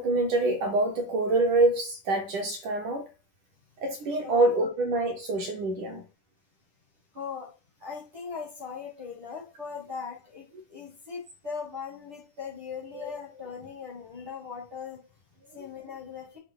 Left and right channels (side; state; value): left; late; 10 ms